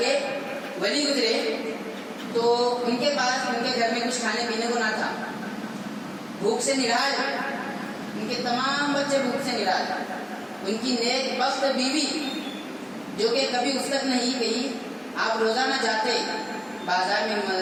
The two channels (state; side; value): identical; both; correlation 1.00